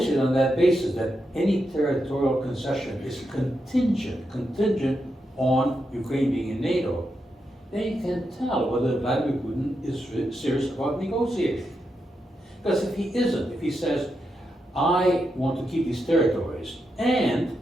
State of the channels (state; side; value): normal; both; correlation 0.85